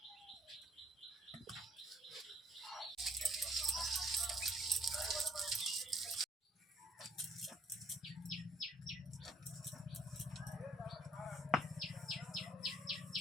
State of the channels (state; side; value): normal; both; correlation 0.63